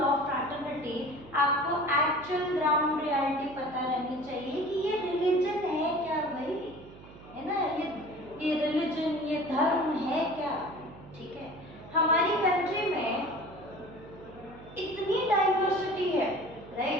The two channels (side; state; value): right; noise; hum, 18 dB below the sound